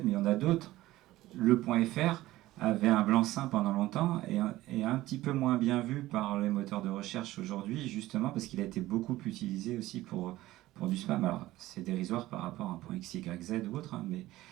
mais il y en a d'autres. Le point .fr avait un blanc-seing pendant longtemps et un petit peu moins bien vu par les moteurs de recherche aujourd'hui, justement parce qu'il a été beaucoup utilisé aussi pour du spam. Alors, c'est dérisoire par rapport à un point XYZ ou autre, hein, mais...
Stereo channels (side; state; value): left; quieter; 16.6 dB